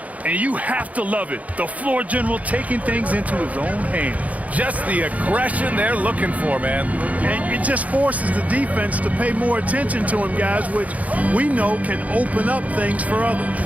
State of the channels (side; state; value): left; late; 0.070 ms